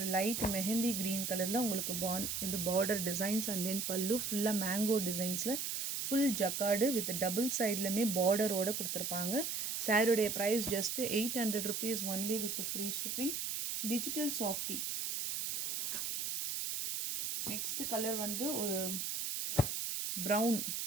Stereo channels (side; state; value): right; noise; hiss, 2 dB below the sound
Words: லைட் மெஹந்தி க்ரீன் கலரில் உங்களுக்கு இந்த பார்டர் டிசைன்ஸ் அண்ட் தென் பல்லு ஃபுல்லாக மேங்கோ டிசைன்ஸில் ஃபுல் ஜக்கார்டு வித் டபுள் சைட்லையுமே பார்டரோடு கொடுத்துருப்பாங்க. சாரியுடைய price just 800 rupees only with free shipping. Digital softy. Next colour வந்து ஒரு